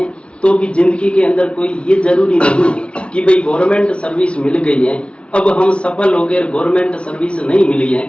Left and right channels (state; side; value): late; right; 0.059 ms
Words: तो भी जिंदगी के अंदर कोई ये जरूरी नहीं है कि भाई गवर्नमेंट सर्विस मिल गई है, अब हम सफल हो गए, गवर्नमेंट सर्विस नहीं मिली है